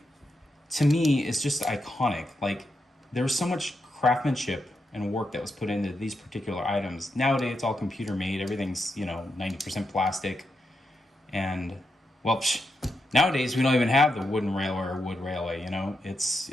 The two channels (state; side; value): normal; both; correlation 0.85